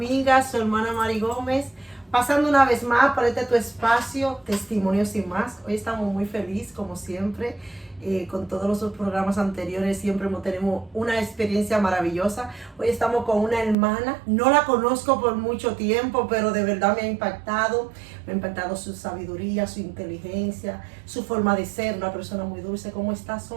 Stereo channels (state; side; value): drops out; left; at 13.8 s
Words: su hermana Mari Gómez, pasando una vez más por tu espacio, Testimonios y Más. Hoy estamos muy felices, como siempre, con todos los programas anteriores, siempre tenemos una experiencia maravillosa. Hoy estamos con una hermana, no la conozco por mucho tiempo, pero de verdad me ha impactado su sabiduría, su inteligencia, su forma de ser, una persona muy dulce. ¿Cómo estás,